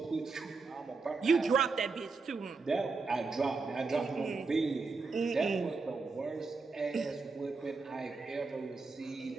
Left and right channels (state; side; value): quieter; left; 4.2 dB